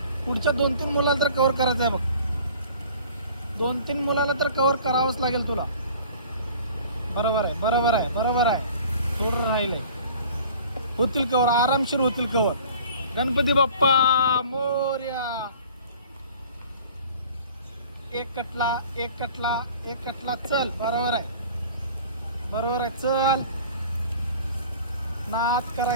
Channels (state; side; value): inverted; both; correlation -0.47